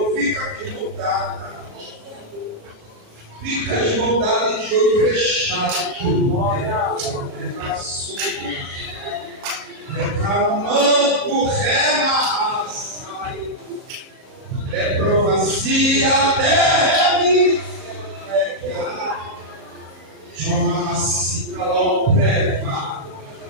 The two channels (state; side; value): late; left; 37 ms